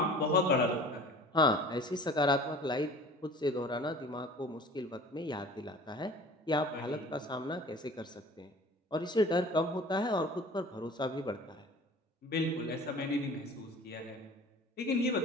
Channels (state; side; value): normal; both; correlation 0.44